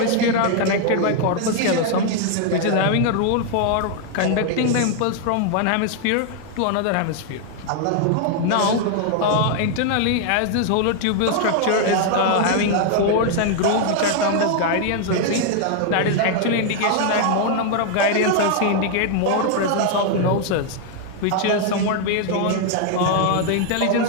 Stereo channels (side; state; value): both; different; correlation 0.00